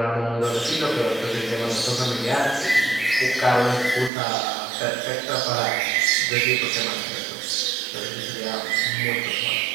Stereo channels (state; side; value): drops out; left; at 4.1 s